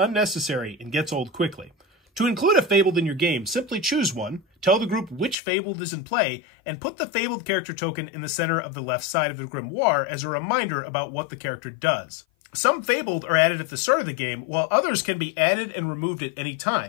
and gets old quickly. To include a Fabled in your game, simply choose one, tell the group which Fabled is in play, and put the Fabled character token in the center of the left side of the Grimoire as a reminder about what the character does. Some Fabled are added at the start of the game, while others can be added and removed at any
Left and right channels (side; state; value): right; drops out; at 5.4 s